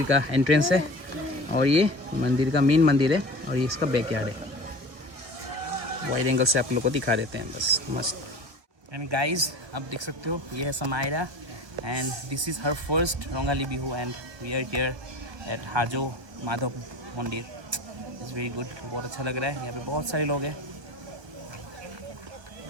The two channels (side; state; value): left; late; 1.4 ms